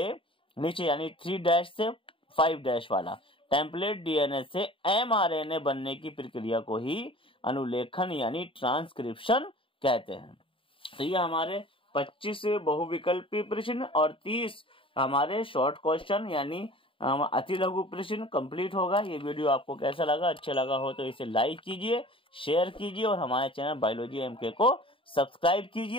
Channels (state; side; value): late; right; 0.25 ms